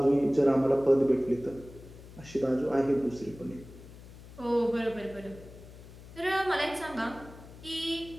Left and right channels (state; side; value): noise; left; hum, 18 dB below the sound